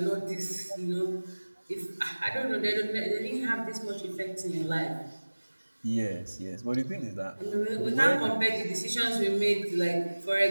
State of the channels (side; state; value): both; inverted; correlation -1.00